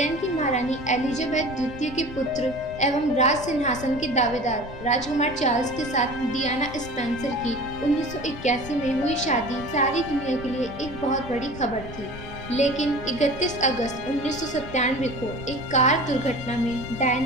की महारानी एलिजाबेथ द्वितीय के पुत्र एवं राज सिंहासन के दावेदार राजकुमार चार्ल्स के साथ डियाना स्पेंसर की 1981 में हुई शादी सारी दुनिया के लिए एक बहुत बड़ी खबर थी। लेकिन 31 अगस्त 1997 को एक कार दुर्घटना में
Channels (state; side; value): noise; left; rumble, 13 dB below the sound